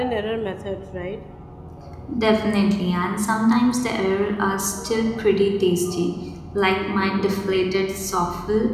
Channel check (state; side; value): identical; both; correlation 1.00